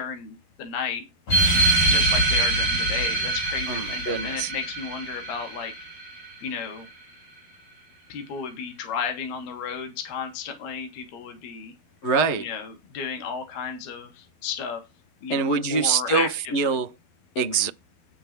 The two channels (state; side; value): late; right; 11 ms